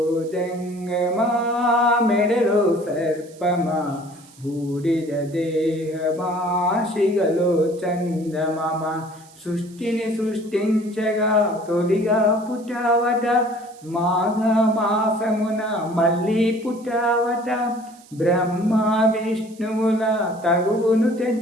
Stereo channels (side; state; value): right; noise; hiss, 25 dB below the sound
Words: జంగమా మెడలో సర్పమా బూడిద దేహమా శిగలో చందమమ సృష్టిని సృష్టించగా తొలిగా పుట్టావట మాఘమాసమున మళ్ళీ పుట్టావట బ్రహ్మ విష్ణువుల తగువును